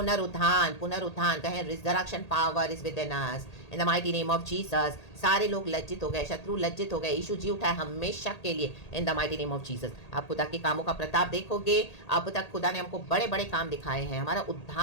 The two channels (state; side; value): late; right; 1.8 ms